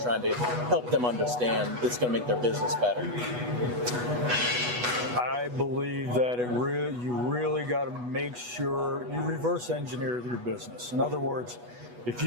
to help them understand that's going to make their business better? I believe that you really got to make sure you reverse engineer your business. In other words, if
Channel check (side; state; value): left; late; 8.2 ms